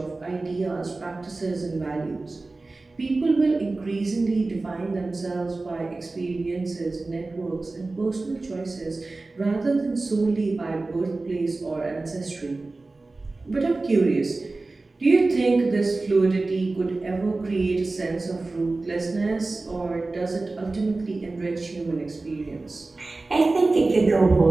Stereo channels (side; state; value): left; quieter; 3.3 dB